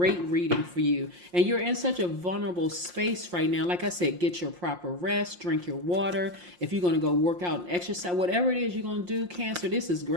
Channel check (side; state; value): left; late; 5.7 ms